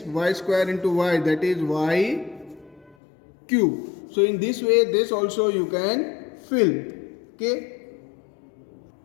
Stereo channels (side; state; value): right; drops out; at 3.0 s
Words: Y square into y, that is y cube. So in this way this also you can fill. Okay.